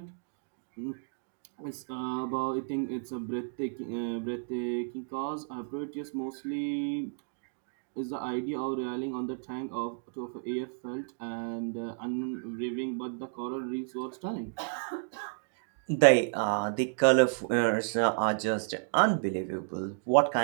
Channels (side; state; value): left; silent; digital silence